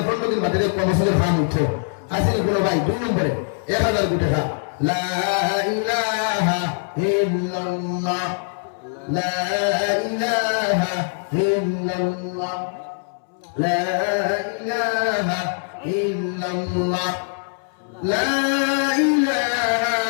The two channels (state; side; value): silent; right; 64 dB below the other